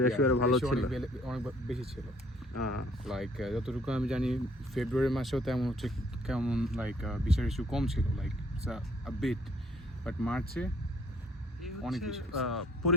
আরো ভালো ছিল, অনেক বেশি ছিল। লাইক যতটুকু আমি জানি ফেব্রুয়ারি মাসেও তেমন হচ্ছে, কেমন লাইক ভিসা রেশিও কম ছিল, লাইক a bit, বাট মার্চে অনেক বেশি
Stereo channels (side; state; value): both; normal; correlation 0.61